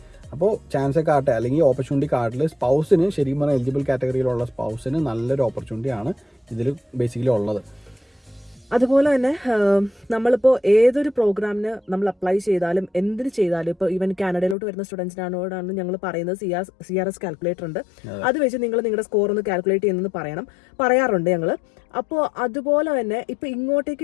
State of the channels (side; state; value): right; drops out; at 14.6 s